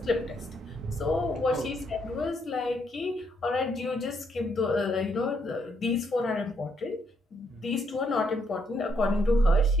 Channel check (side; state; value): both; normal; correlation 0.74